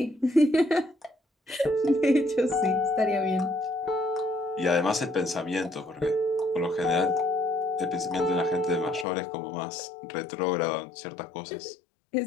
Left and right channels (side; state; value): right; drops out; at 9.1 s